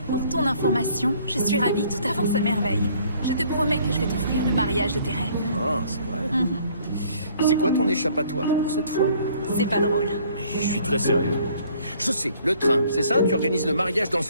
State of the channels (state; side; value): inverted; both; correlation -0.59